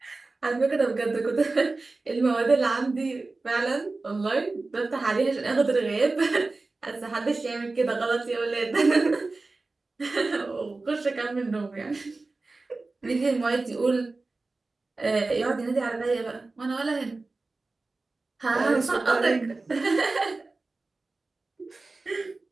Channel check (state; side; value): quieter; left; 3.5 dB